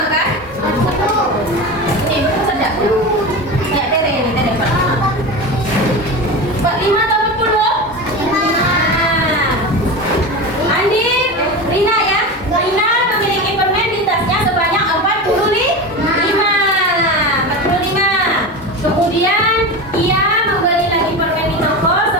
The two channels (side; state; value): both; normal; correlation 0.25